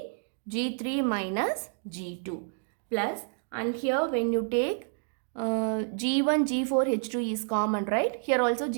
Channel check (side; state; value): left; silent; 58 dB below the other